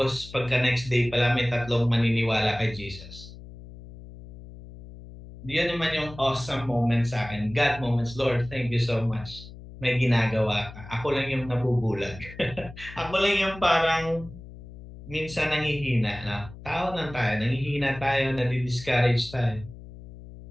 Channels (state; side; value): noise; left; hum, 16 dB below the sound